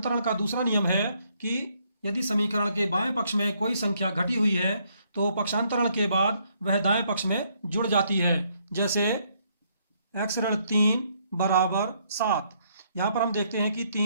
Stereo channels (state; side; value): inverted; both; correlation -0.71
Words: का दूसरा नियम है कि यदि समीकरण के बाएं पक्ष में कोई संख्या घटी हुई है तो पक्षांतरण के बाद वह दाएं पक्ष में जुड़ जाती है। जैसे x ऋण 3 बराबर 7, यहाँ पर हम देखते हैं कि